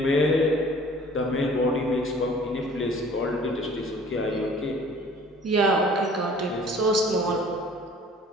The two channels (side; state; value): both; normal; correlation 0.51